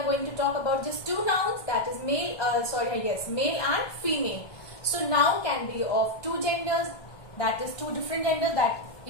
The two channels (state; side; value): late; right; 1.2 ms